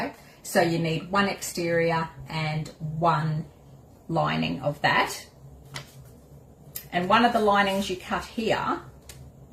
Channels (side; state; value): both; identical; correlation 1.00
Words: So you need 1 exterior and 1 lining of that. And one of the linings you cut here